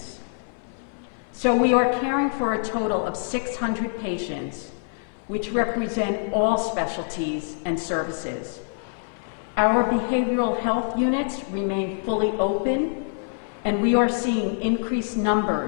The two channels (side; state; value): right; silent; 59 dB below the other